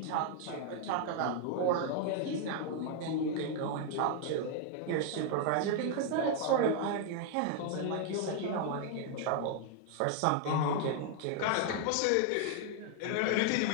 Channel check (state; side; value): different; both; correlation 0.00